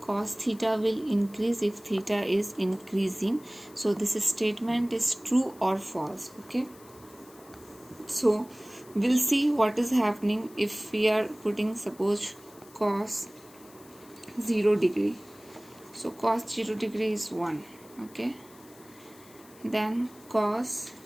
theta will increase if theta is increasing. So this statement is true or false, okay. So we'll see what is happening if we are putting suppose cos 0 degree. So cos 0 degree is 1, okay. Then cos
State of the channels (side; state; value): left; noise; hiss, 24 dB below the sound